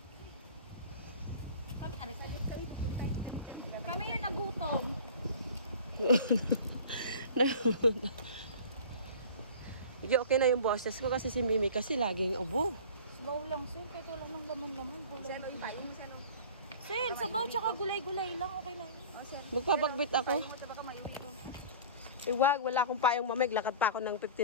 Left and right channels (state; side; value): inverted; both; correlation -0.40